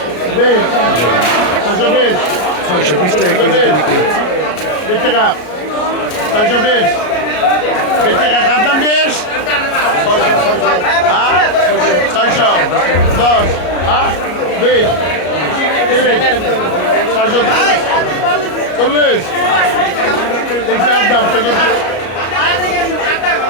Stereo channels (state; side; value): late; right; 33 ms